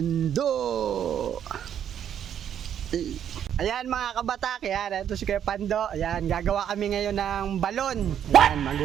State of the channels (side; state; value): left; quieter; 9.4 dB